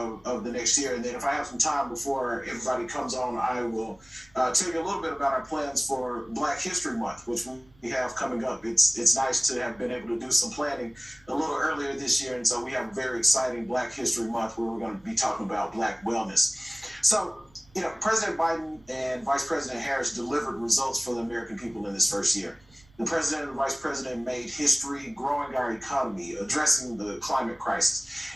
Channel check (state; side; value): noise; right; rumble, 29 dB below the sound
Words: the next year. And then if I have some time before everybody comes on, I will tell you a little bit about our plans for Black History Month, which we have coming up. It's nice to have been able to do some planning a little earlier this year, and so we have a very exciting Black History Month where we're going to be talking about Black wellness. So, President Biden and Vice President Harris delivered results for the American people in this first year. The president and vice president made history growing our economy, addressing the climate crisis,